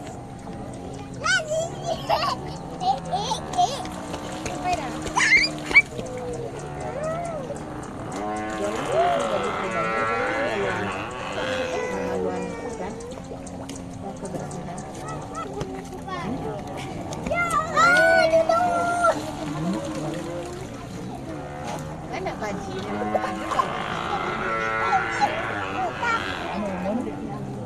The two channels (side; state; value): both; identical; correlation 1.00